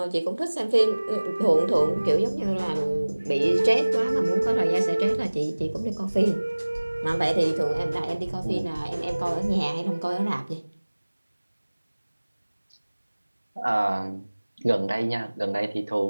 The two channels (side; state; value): both; inverted; correlation -1.00